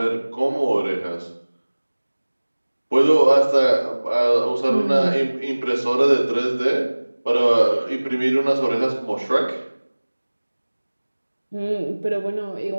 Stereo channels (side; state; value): both; inverted; correlation -1.00